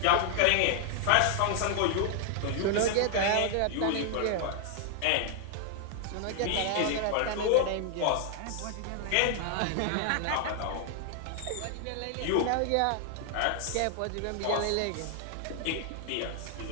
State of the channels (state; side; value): different; both; correlation 0.00